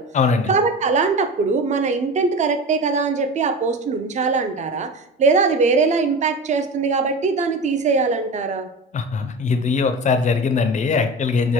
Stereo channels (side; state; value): both; normal; correlation 0.30